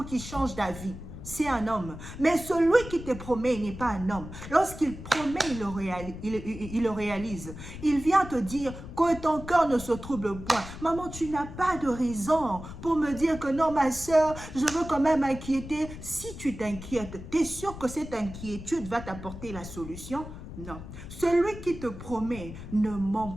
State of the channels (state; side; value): noise; left; rumble, 12 dB below the sound